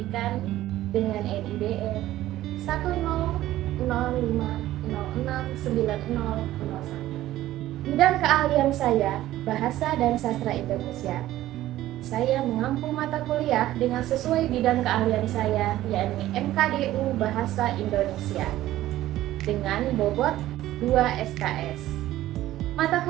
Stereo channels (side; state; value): left; quieter; 14.7 dB